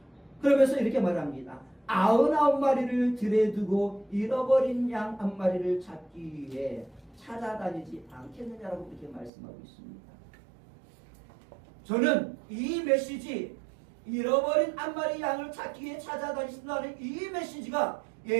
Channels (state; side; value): drops out; left; at 9.3 s